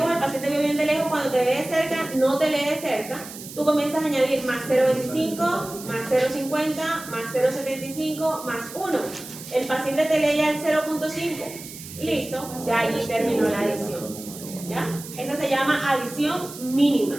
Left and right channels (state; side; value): noise; right; hiss, 13 dB below the sound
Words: el paciente vio bien de lejos, cuando te lee de cerca, no te lee de cerca, tú comienzas a añadir más 0.25, más 0.50, más 0.75, más 1. El paciente te lee ya el 0.5. Listo, ya ahí terminó la adición. ¿Ya? Esa se llama adición